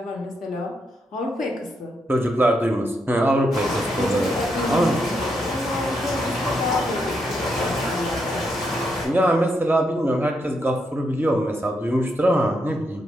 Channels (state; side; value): normal; both; correlation 0.80